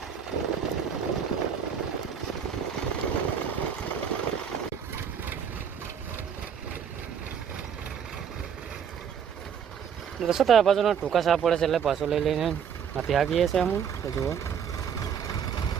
दोस्तों तो बाजू टूका साफ पड़े से पासो लई लईने हाथी हाकीए छे हम तो जुओ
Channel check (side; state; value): left; quieter; 7.7 dB